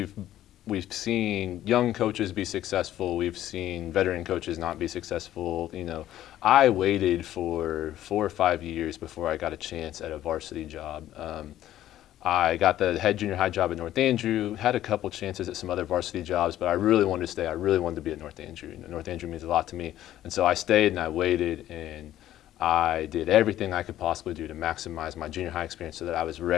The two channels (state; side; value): quieter; right; 12.9 dB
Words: seen young coaches be successful. We've seen veteran coaches not be successful. I waited for 4 or 5 years before I got a chance at a varsity job. I got the head junior high job at North Andrew, had a couple chances at some other varsity jobs, but I really wanted to stay. I really wanted to be at North Andrew. North Andrew means a lot to me. And so I stayed and I waited, and I did everything I could possibly do to maximize my junior high experience so that I was